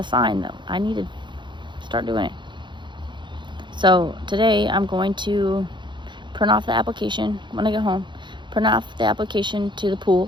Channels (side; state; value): left; late; 0.23 ms